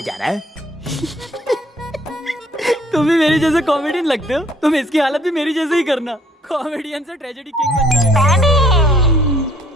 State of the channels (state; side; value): normal; both; correlation 0.61